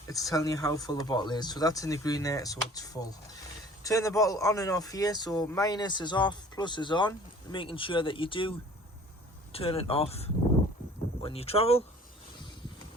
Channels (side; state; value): both; normal; correlation 0.49